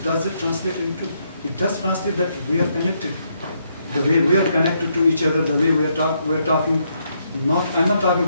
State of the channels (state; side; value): inverted; both; correlation -0.76